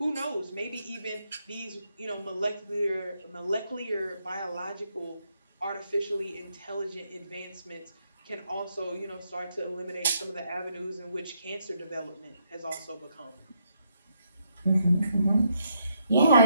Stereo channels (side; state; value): both; inverted; correlation -0.76